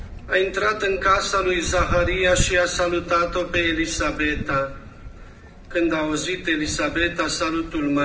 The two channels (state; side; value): identical; both; correlation 1.00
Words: A intrat în casa lui Zaharia și a salutat-o pe Elisabeta. Când a auzit Elisabeta salutul